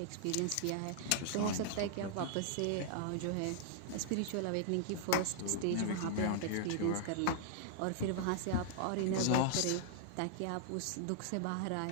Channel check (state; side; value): different; both; correlation -0.01